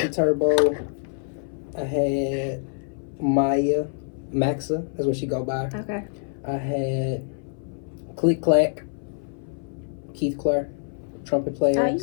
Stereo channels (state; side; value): silent; right; 57 dB below the other